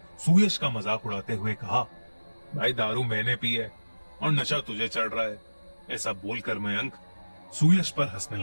सुयश का मजाक उड़ाते हुए कहा, भाई दारू मैंने पी है और नशा तुझे चढ़ रहा है। ऐसा बोलकर मयंक सुयश पर हंसने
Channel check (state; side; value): inverted; both; correlation -1.00